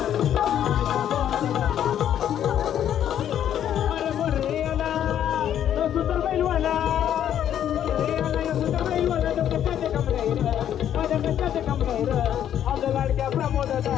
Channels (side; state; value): right; quieter; 10.3 dB